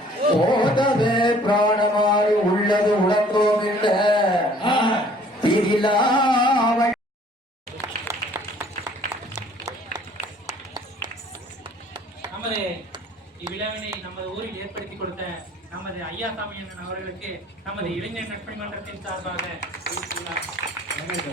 ஓதவே பிராணமாய் உள்ளது உலகோம் இல்ல திரிலாவள். நமது இவ்விழாவினை நமது ஊரில் ஏற்படுத்தி கொடுத்த நமது ஐயாசாமி அண்ணன் அவர்களுக்கு நமது இளைஞர் நட்பணி மன்றத்தின் சார்பாக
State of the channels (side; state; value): both; normal; correlation 0.55